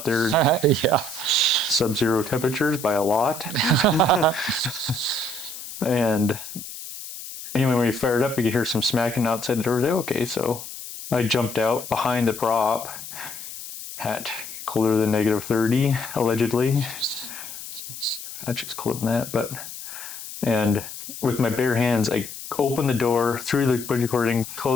there. Yeah. Sub-zero temperatures by a lot. And anyway, when you fired up, you could hear some smacking outside the door. Okay, so I jumped out behind the prop at colder than -30, allegedly. Actually, it's colder than that, and with my bare hands, I open the door through the bungee cord and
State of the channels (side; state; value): left; noise; hiss, 11 dB below the sound